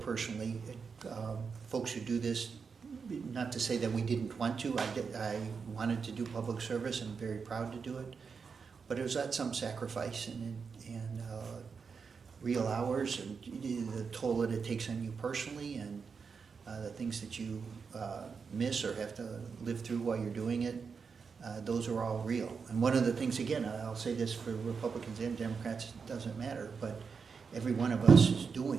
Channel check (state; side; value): quieter; left; 5.6 dB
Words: personally. Folks who do this, not to say that we didn't want to. I wanted to do public service and I'm very proud to do it, but it was at some sacrifice and real hours and the toll that it takes on you personally and the things that you miss or have to live through while you're doing it. Those are all real. And one of the things, again, I'll say this for Republicans and Democrats, it doesn't matter, but every one of us is